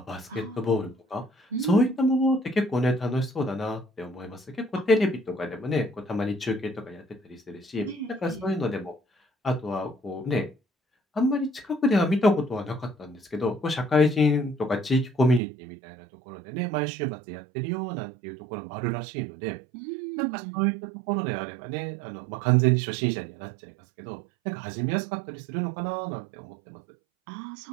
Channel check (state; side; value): drops out; left; at 15.4 s